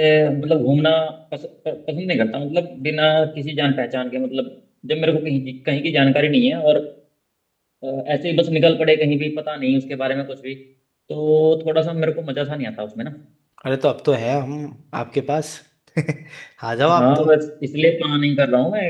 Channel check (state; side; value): identical; both; correlation 1.00